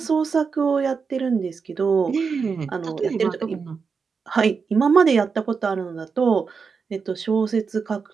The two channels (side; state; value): left; quieter; 5.4 dB